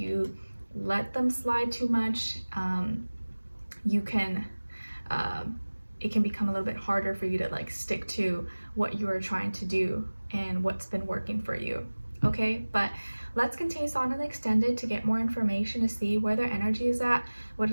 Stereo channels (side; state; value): both; inverted; correlation -1.00